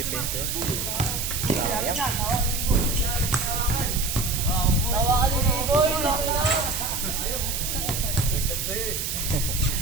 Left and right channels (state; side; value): noise; right; hiss, 2 dB below the sound